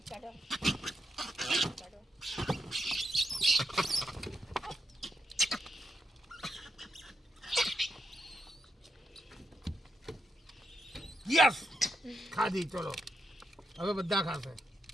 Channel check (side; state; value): both; normal; correlation 0.84